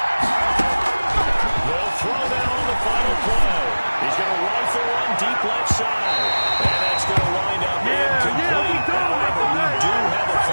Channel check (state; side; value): inverted; both; correlation -1.00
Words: They'll throw down on the final play. He's going to rifle one deep left side. And that's going to wind up incomplete. However, we do have a